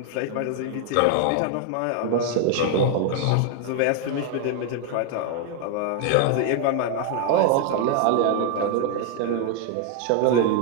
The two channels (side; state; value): both; different; correlation 0.00